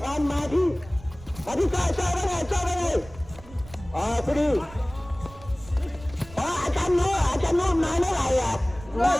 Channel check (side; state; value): right; noise; rumble, 18 dB below the sound